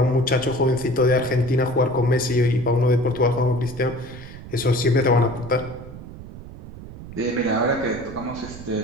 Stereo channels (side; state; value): right; noise; rumble, 14 dB below the sound